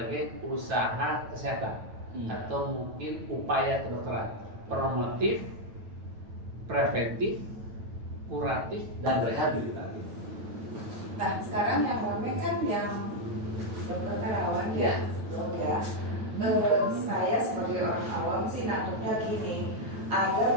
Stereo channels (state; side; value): late; left; 9.1 ms